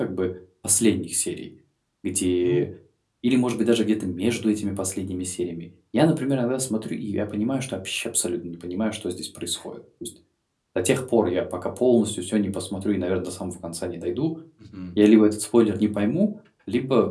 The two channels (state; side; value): identical; both; correlation 1.00